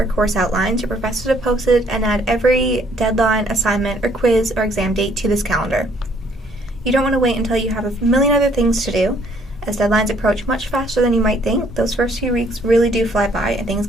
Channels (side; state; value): both; normal; correlation 0.63